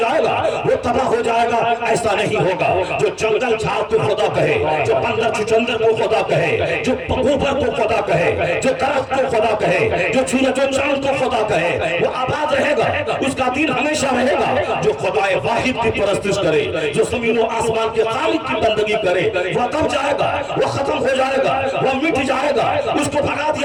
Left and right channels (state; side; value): identical; both; correlation 1.00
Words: گا، وہ تباہ ہو جائے گا۔ ایسا نہیں ہوگا، جو جنگل جھاڑ کو خدا کہے، جو بندر چھچندر کو خدا کہے، جو پگوبر کو خدا کہے، جو درخت کو خدا کہے، جو سورج و چاند کو خدا کہے، وہ آباد رہے گا، اس کا دین ہمیشہ رہے گا۔ جو خدائے واحد کی پرستش کرے، جو زمین و آسمان کے خالق کی بندگی کرے، وہ دب جائے گا، وہ ختم ہو جائے گا، وہ مٹ جائے گا، اس کو بھگا